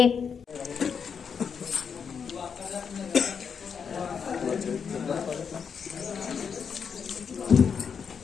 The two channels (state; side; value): quieter; right; 6.6 dB